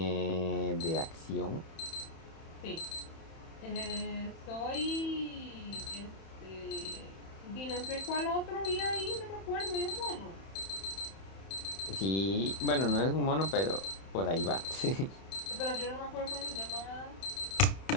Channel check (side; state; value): right; late; 31 ms